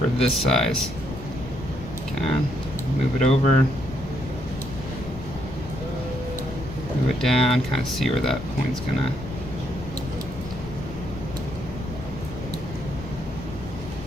this size. Okay. Move it over. Move it down, kind of see where that point's going to.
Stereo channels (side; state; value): left; noise; rumble, 11 dB below the sound